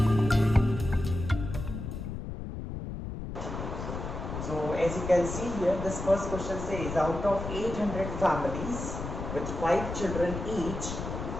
So as you can see here, this first question says out of 800 families with 5 children each,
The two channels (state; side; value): noise; left; rumble, 6 dB below the sound